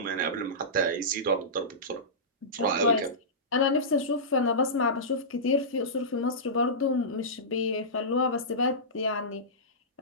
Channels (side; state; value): both; normal; correlation -0.18